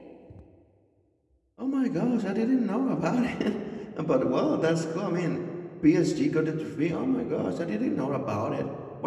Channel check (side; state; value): both; identical; correlation 1.00